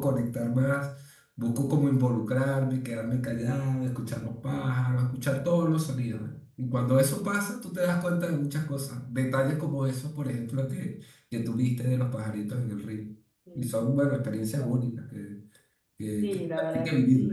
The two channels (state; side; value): identical; both; correlation 1.00